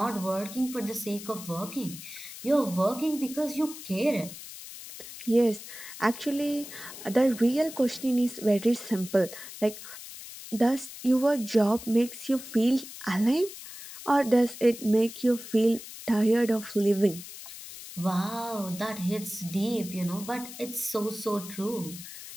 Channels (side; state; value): left; noise; hiss, 13 dB below the sound